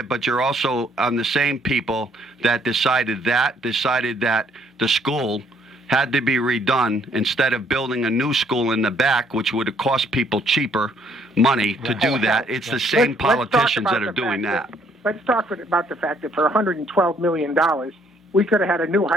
but you're also on the same people that decided that the school had to be redone instead of building a new school in the back, which would have cost people cheaper money to do that. It's the same Let's talk politicians about that are the doing fact that. Let's talk about the fact that for $112 million, we could have had a new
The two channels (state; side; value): normal; both; correlation 0.66